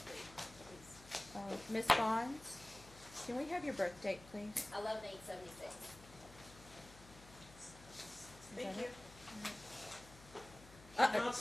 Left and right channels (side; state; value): left; noise; hum, 19 dB below the sound